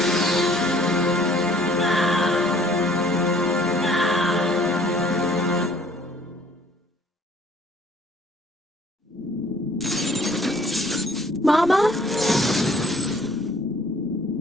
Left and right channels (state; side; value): normal; both; correlation 0.57